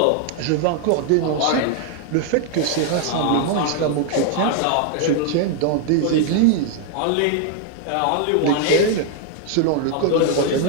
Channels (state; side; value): different; both; correlation 0.00